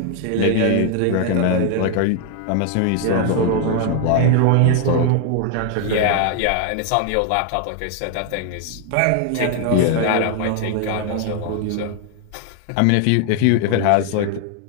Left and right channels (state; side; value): different; both; correlation 0.00